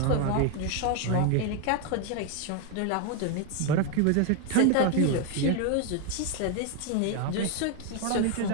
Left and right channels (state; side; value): different; both; correlation 0.01